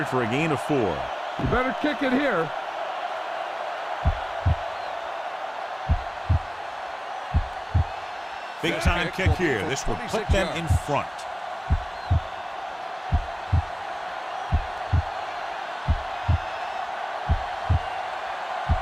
for a gain of 4. You better kick it here. Big time kick here. This will put them in front.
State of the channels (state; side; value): identical; both; correlation 1.00